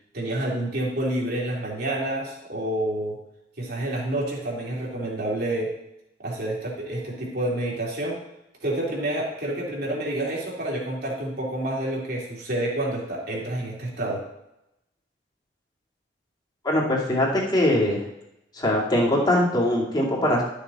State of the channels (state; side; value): normal; both; correlation 0.48